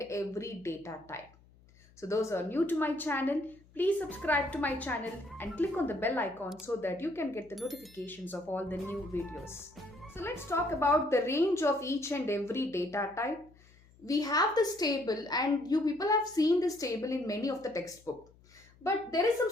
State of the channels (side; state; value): left; noise; hum, 27 dB below the sound